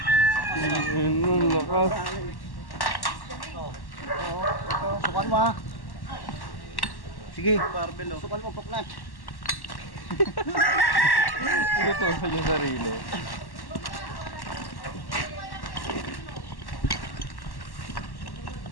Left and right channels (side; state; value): right; late; 1.1 ms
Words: Sukan mo ha. Sige. Barbell oh. Sukan mo, paknat. Ito sa yung sarili.